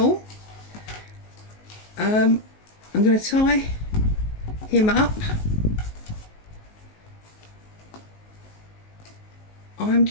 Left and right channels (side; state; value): right; late; 19 ms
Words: I'm going to tie him up. I'm